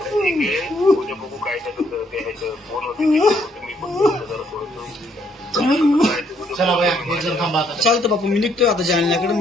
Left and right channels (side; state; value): both; normal; correlation 0.70